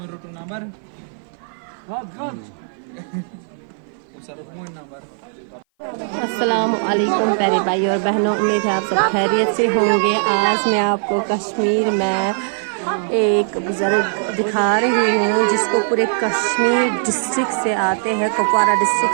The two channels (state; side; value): silent; left; 57 dB below the other